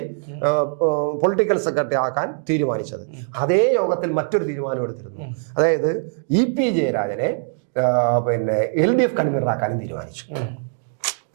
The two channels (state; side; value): silent; left; digital silence